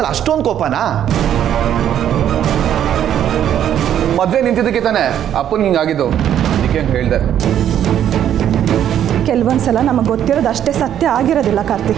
ಅಷ್ಟೊಂದು ಕೋಪನಾ? ಮದುವೆ ನಿಂತಿದ್ದಕ್ಕೆ ತಾನೆ ಅಪ್ಪನಿಗೆ ಹಿಂಗಾಗಿದ್ದು. ಅದಕ್ಕೆ ಹೇಳಿದೆ. ಕೆಲವೊಂದ್ಸಲ ನಮಗೆ ಗೊತ್ತಿರೋದು ಅಷ್ಟೇ ಸತ್ಯ ಆಗಿರೋದಿಲ್ಲ ಕಾರ್ತಿ.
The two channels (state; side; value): quieter; left; 10.3 dB